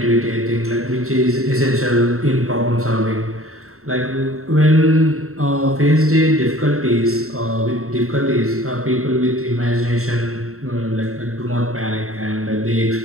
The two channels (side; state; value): left; late; 0.63 ms